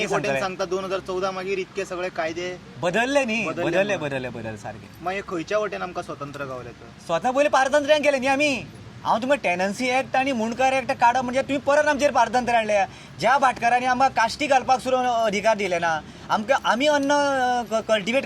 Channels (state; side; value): identical; both; correlation 1.00